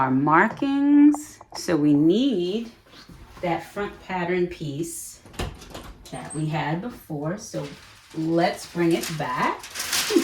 markings. So we need that front pattern piece that we had before. So let's bring it back.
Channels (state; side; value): identical; both; correlation 1.00